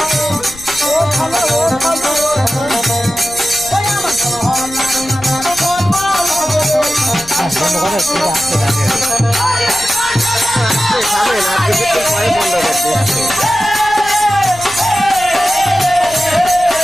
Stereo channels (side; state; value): left; noise; rumble, 19 dB below the sound